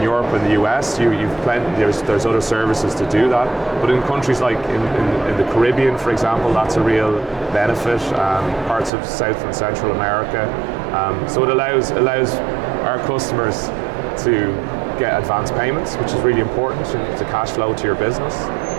Europe and the US, there's other services to do that. But in countries like in the Caribbean, for example, that's a real benefit. Parts of South and Central America. So it allows our customers to get advance payments, which is really important to cash flow to your business,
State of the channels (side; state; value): left; drops out; at 8.9 s